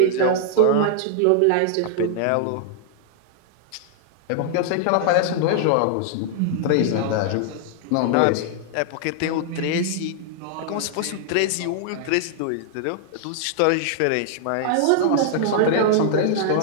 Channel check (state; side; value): different; both; correlation -0.01